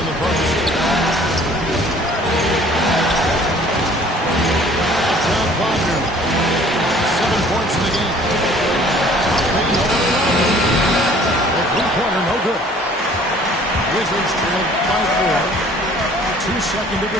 the post. Uptown Wagner. 7 points in the game. The three-pointer, no good. Wizards trailed by 4. 2-second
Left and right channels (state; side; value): normal; both; correlation 0.53